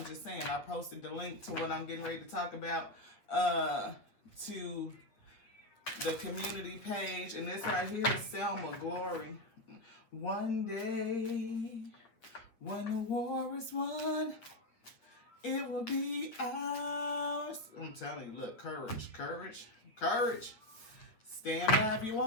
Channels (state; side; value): late; right; 8.7 ms